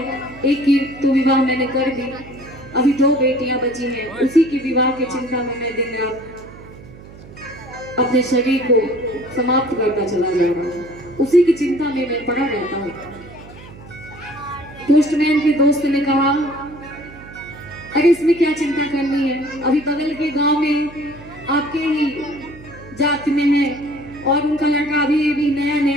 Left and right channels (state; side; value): noise; right; hum, 18 dB below the sound